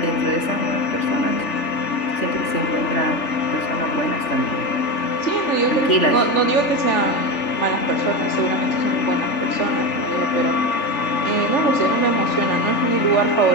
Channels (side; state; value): right; late; 3.4 ms